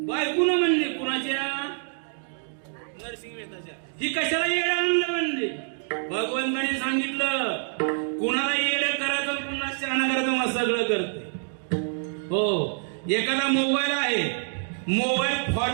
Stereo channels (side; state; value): left; silent; digital silence